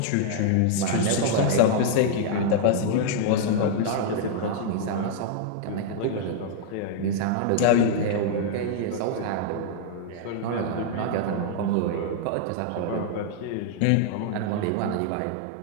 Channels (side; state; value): both; different; correlation -0.01